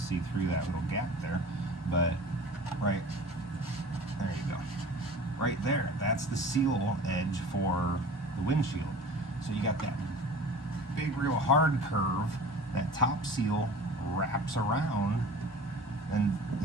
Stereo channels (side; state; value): both; normal; correlation 0.41